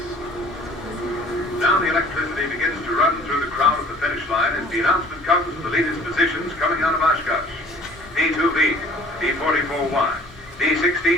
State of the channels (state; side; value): normal; both; correlation 0.51